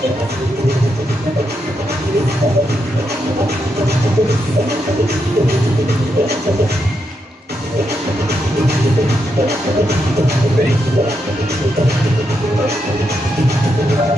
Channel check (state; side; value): normal; both; correlation 0.82